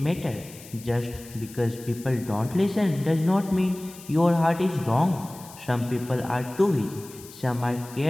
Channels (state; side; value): noise; left; hiss, 18 dB below the sound